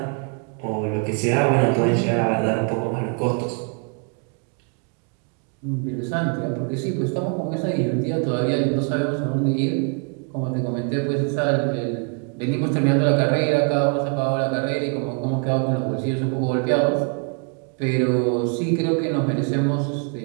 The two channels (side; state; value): left; quieter; 38.2 dB